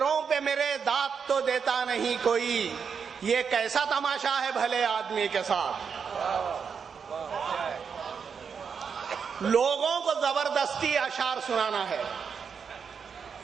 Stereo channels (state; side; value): quieter; left; 6.4 dB